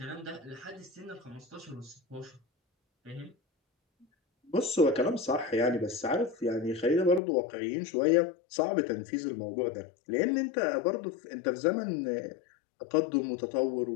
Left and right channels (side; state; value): right; drops out; at 7.2 s